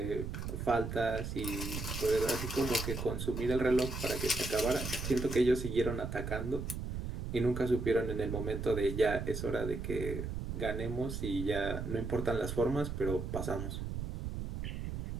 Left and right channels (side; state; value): right; noise; rumble, 5 dB below the sound